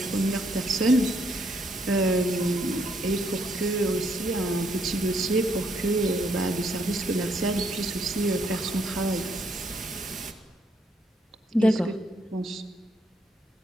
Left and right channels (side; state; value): both; normal; correlation 0.72